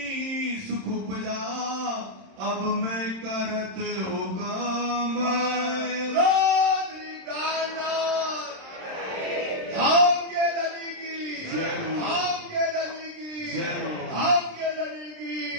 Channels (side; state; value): left; late; 26 ms